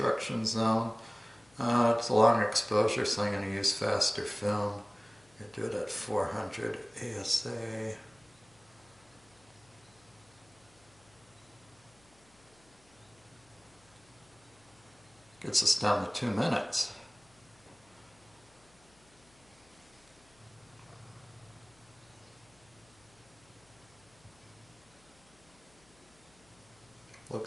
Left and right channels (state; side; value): noise; left; hum, 29 dB below the sound